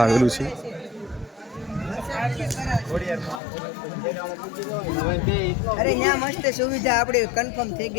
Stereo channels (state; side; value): drops out; right; at 3.4 s